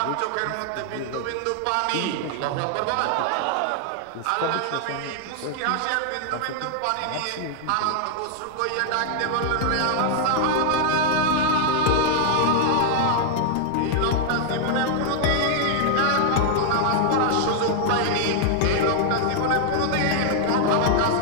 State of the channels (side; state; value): both; different; correlation 0.00